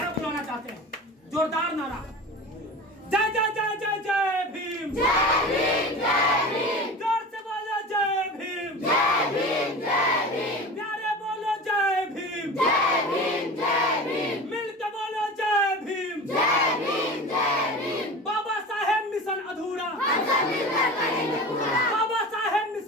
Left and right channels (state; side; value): normal; both; correlation 0.34